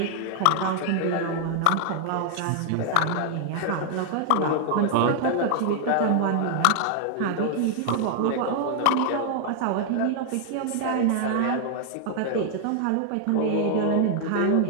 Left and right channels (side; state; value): both; different; correlation 0.00